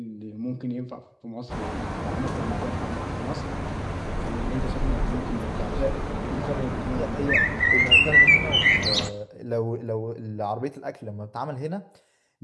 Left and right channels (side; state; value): both; identical; correlation 1.00